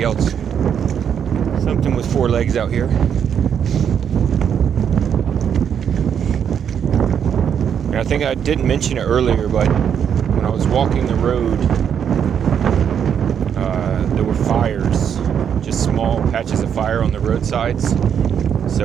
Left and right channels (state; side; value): quieter; left; 8.2 dB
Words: else, something with 4 legs out here. And I think I didn't mention it earlier, but when I was walking the road, there were fires, just small patches of fire on the roadsides.